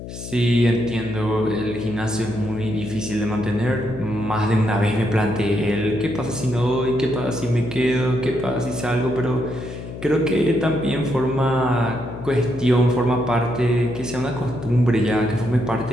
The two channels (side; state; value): left; noise; hum, 10 dB below the sound